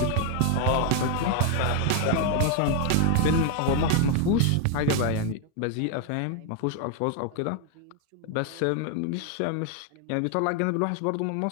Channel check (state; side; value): different; both; correlation 0.00